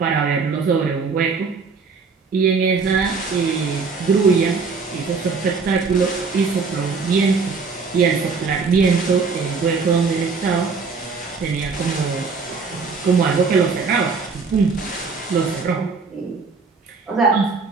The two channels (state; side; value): quieter; left; 4.8 dB